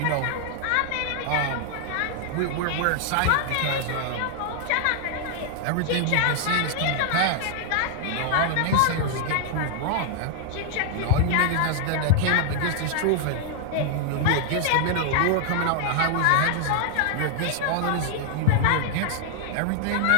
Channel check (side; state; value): both; different; correlation 0.00